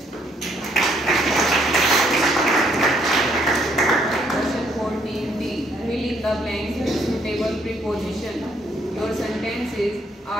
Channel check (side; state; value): both; normal; correlation 0.68